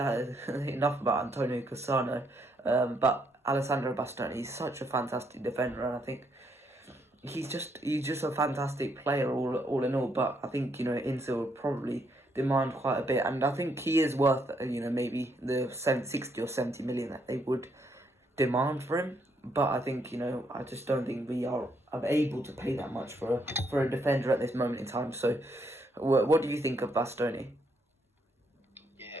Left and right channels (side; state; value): both; normal; correlation 0.74